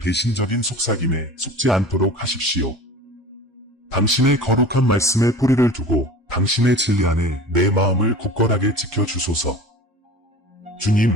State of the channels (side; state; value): both; normal; correlation 0.39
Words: 속삭임에 속지 않도록 하십시오. 당신의 거룩한 말씀에 뿌리를 두고 당신의 진리 안에 내 마음을 굳건하게 지켜주소서. 주님,